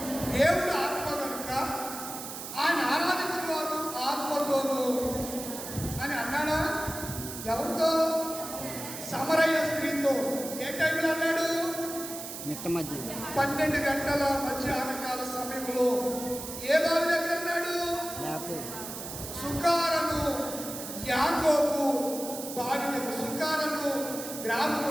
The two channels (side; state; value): right; noise; hiss, 9 dB below the sound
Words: దేవుడు ఆత్మ కనుక ఆయన ఆరాధించేవారు ఆత్మతోనూ అని అన్నాడా? ఎవరితో? సమరయ్య స్త్రీతో. ఏ టైంలో అన్నాడు? మిట్ట మధ్య 12 గంటల మధ్యాహ్నకాల సమయంలో. ఏ బావి దగ్గర అన్నాడు? సుకారను యాకోబు బావి దగ్గర. సుకారను